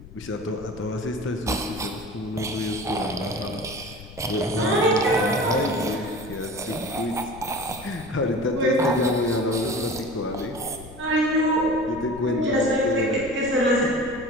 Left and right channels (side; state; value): left; noise; rumble, 17 dB below the sound